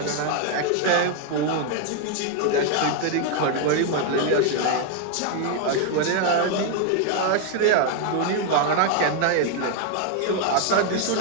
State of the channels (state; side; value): different; both; correlation 0.00